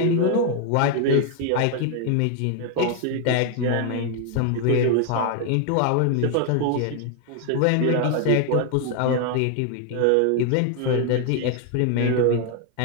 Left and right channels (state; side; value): different; both; correlation 0.00